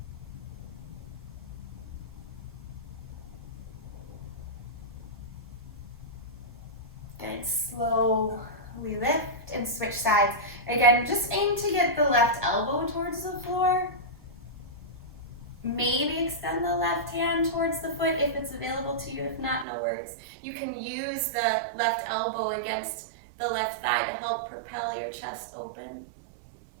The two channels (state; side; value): drops out; left; at 19.7 s